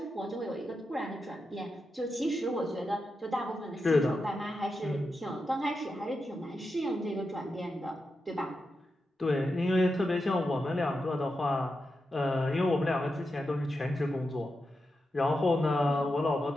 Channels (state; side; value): normal; both; correlation 0.88